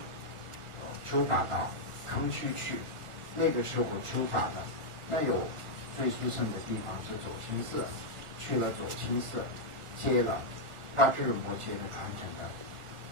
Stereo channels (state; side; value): late; left; 1.4 ms